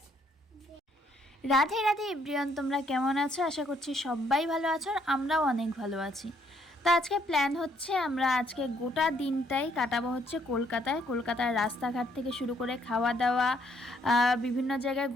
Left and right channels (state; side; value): normal; both; correlation 0.68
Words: রাধে রাধে এভরিওয়ান, তোমরা কেমন আছো? আশা করছি সবাই ভালো আছো আর আমরাও অনেক ভালো আছি। তো আজকে প্ল্যান হচ্ছে আমরা আজকে গোটা দিনটাই কাটাবো হচ্ছে কলকাতার রাস্তাঘাট থেকে শুরু করে খাওয়া দাওয়া, বিভিন্ন জায়গায়